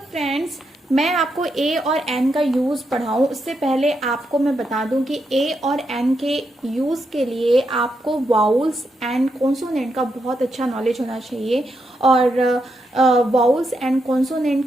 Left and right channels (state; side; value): normal; both; correlation 0.82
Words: friends, मैं आपको ए और N का use पढ़ाऊँ उससे पहले आपको मैं बता दूं कि ए और एन के यूज़ के लिए आपको वाउल्स एंड कॉन्सोनेंट का बहुत अच्छा नॉलेज होना चाहिए। और वाउल्स एंड